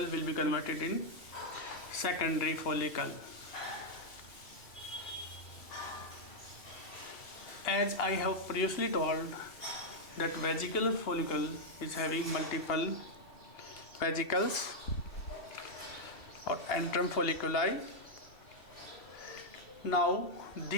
be converted in secondary follicle. As I have previously told that vesicular follicle is having multiple vesicles or antrum folliculi. Now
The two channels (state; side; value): late; right; 2.7 ms